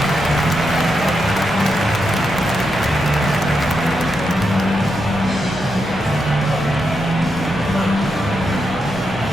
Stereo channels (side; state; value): both; normal; correlation 0.84